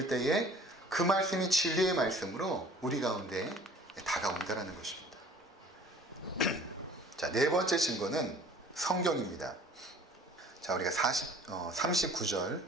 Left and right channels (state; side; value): normal; both; correlation 0.50